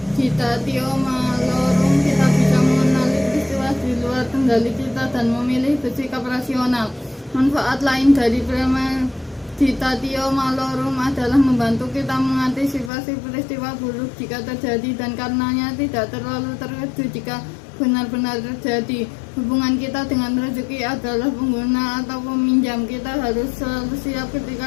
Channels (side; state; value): right; drops out; at 12.9 s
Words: malorum kita bisa mengenali di luar kendali kita dan memilih bersikap rasional. Manfaat lain dari premeditatio malorum adalah membantu kita mengantisipasi peristiwa buruk jika terjadi, dan karenanya tidak terlalu terkejut jika benar-benar terjadi. Hubungan kita dengan rezeki adalah pengguna atau peminjam. Kita harus selalu siap ketika